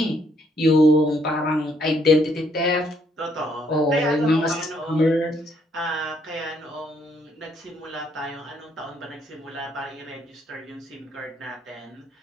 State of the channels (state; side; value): normal; both; correlation 0.70